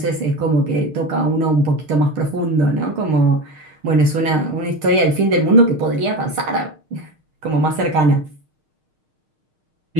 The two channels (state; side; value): late; left; 6.5 ms